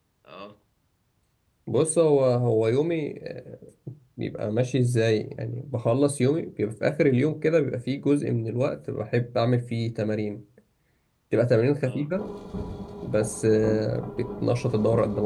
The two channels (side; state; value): both; identical; correlation 1.00